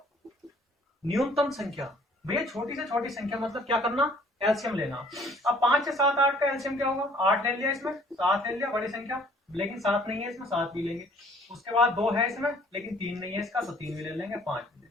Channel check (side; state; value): both; normal; correlation 0.57